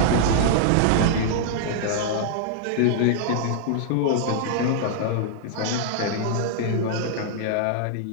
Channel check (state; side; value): different; both; correlation -0.01